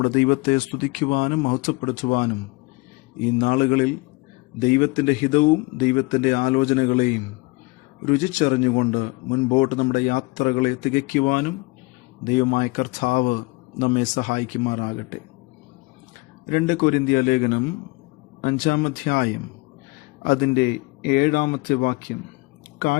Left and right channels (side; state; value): right; quieter; 24.9 dB